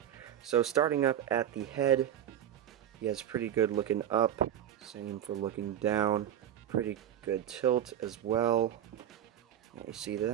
So starting up at the head, he has pretty good looking up, same for looking down, pretty good tilt as well. You see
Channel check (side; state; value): left; quieter; 10.6 dB